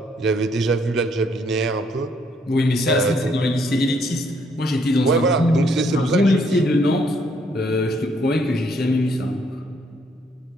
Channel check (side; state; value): both; normal; correlation 0.69